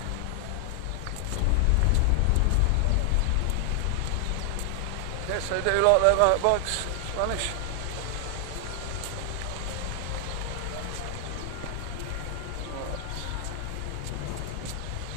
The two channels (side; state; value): both; different; correlation 0.00